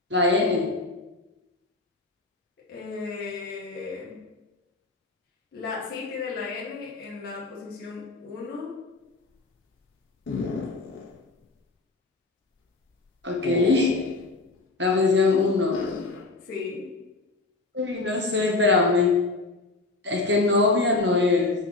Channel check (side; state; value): right; quieter; 3.3 dB